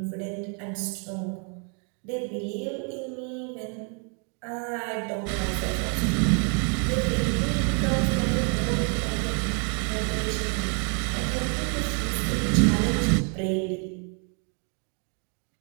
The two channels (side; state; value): left; quieter; 39.9 dB